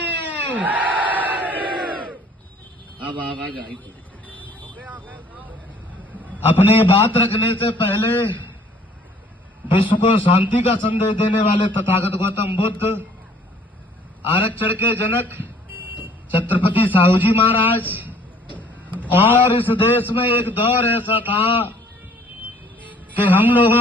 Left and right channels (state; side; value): normal; both; correlation 0.56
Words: अब आवाज आई। अपनी बात रखने से पहले विश्व को शांति का संदेश देने वाले तथागत गौतम बुद्ध, आरक्षण के जनक छत्रपति साहू जी महाराज, और इस देश में एक दौर ऐसा था कि हम